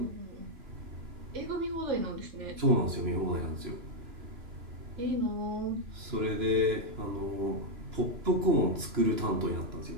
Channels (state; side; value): late; left; 2.9 ms